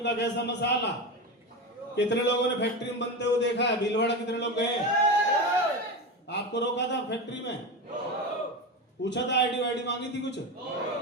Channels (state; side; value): normal; both; correlation 0.21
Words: का कैसा मसाला? कितने लोगों ने फैक्ट्री में बनते हुए देखा है? भीलवाड़ा कितने लोग गए? आपको रोका था फैक्ट्री में? पूछा था आईडी वाईडी मांगी थी कुछ?